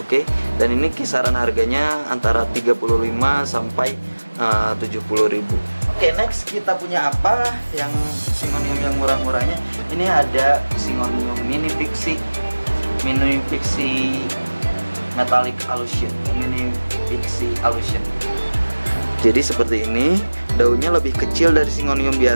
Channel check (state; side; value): inverted; both; correlation -1.00